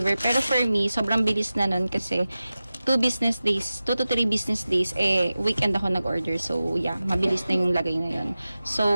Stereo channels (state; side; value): inverted; both; correlation -0.95